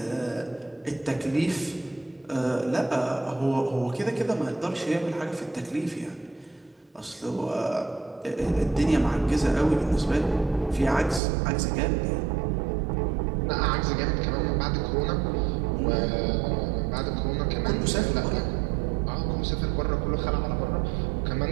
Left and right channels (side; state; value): left; drops out; at 11.2 s